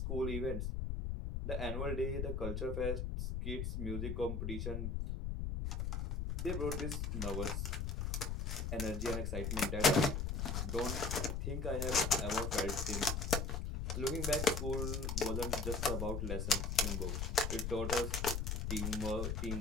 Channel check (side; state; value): left; noise; rumble, 1 dB below the sound